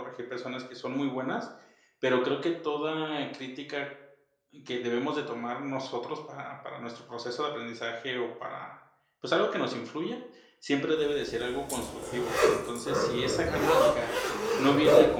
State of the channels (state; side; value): identical; both; correlation 1.00